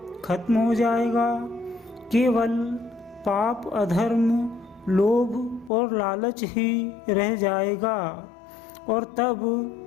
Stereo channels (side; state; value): right; drops out; at 5.7 s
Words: खत्म हो जाएगा। केवल पाप, अधर्म, लोभ और लालच ही रह जाएगा और